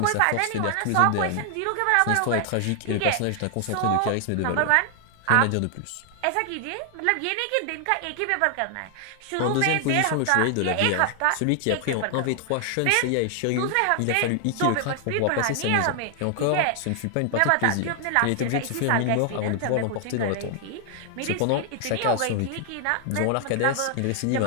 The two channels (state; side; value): different; both; correlation 0.00